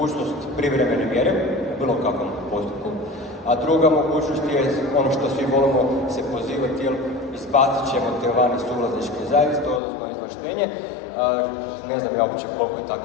privremene mjere u bilo kakvom postupku, a druga mogućnost je ono što svi volimo se pozivati, jer izbacit ćemo te vani suvlasničke zajednice, odnosno izvlaštenje. Ne znam ja uopće koliko je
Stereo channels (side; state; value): right; drops out; at 9.8 s